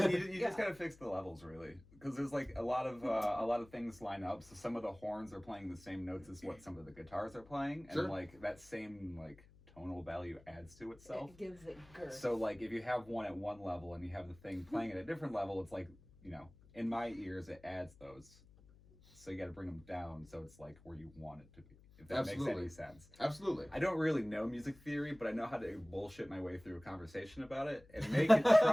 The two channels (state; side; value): noise; left; hum, 24 dB below the sound